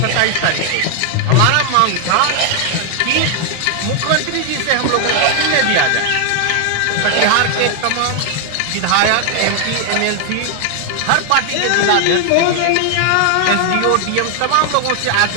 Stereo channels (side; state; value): both; different; correlation 0.00